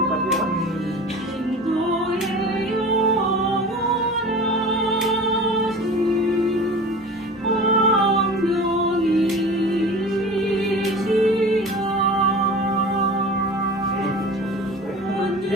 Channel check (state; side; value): normal; both; correlation 0.37